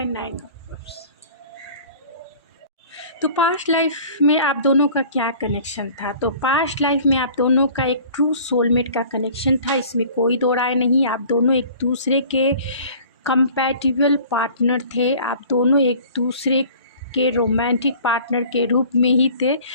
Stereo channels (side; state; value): both; inverted; correlation -0.47